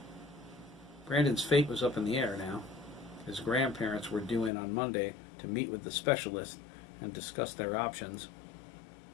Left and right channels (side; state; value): right; drops out; at 4.5 s